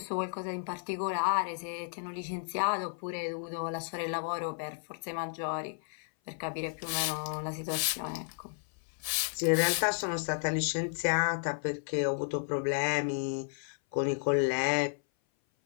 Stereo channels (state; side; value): silent; right; 56 dB below the other